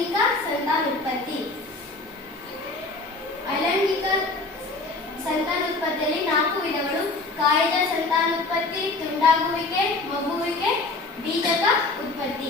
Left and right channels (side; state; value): right; quieter; 3.4 dB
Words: ಸಂತಾನೋತ್ಪತ್ತಿ. ಅಲೈಂಗಿಕ ಸಂತಾನೋತ್ಪತ್ತಿಯಲ್ಲಿ 4 ವಿಧಗಳು: ಕಾಯಜ ಸಂತಾನೋತ್ಪತ್ತಿ, ತುಂಡಾಗುವಿಕೆ, ಮಗುವಿಕೆ, ಬೀಜಕ